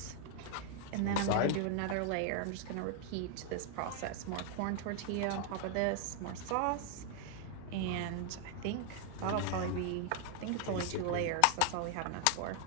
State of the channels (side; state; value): both; different; correlation 0.00